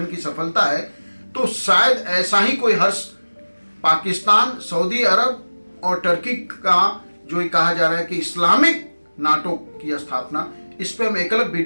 की सफलता है। तो शायद ऐसा ही कोई हर्ष पाकिस्तान, सऊदी अरब और टर्की का जो ये कहा जा रहा है कि इस्लामिक नाटो की स्थापना, इस पे हम एक अलग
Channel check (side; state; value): both; inverted; correlation -1.00